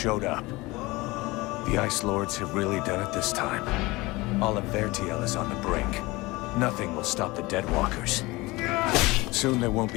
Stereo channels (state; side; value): quieter; right; 21.9 dB